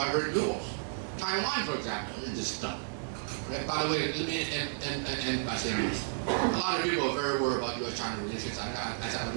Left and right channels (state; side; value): silent; left; digital silence